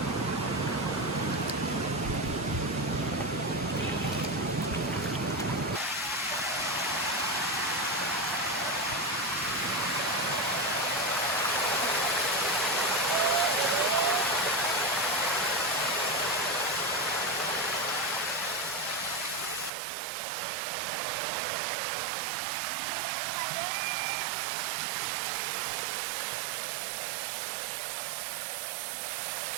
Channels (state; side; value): drops out; left; at 19.7 s